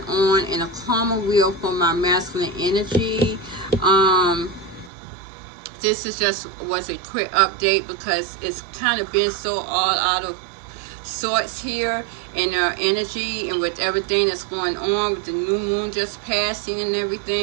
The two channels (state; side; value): drops out; left; at 4.9 s